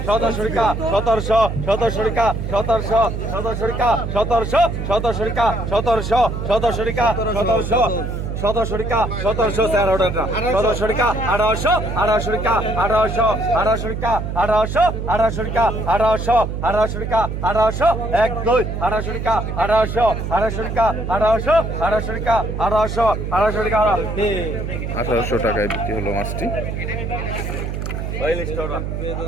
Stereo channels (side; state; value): right; noise; hum, 4 dB below the sound